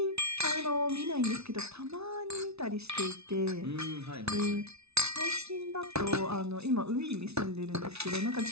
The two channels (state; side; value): late; left; 0.80 ms